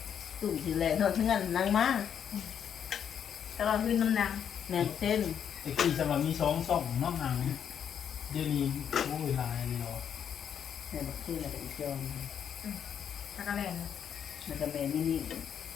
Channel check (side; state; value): right; quieter; 8.4 dB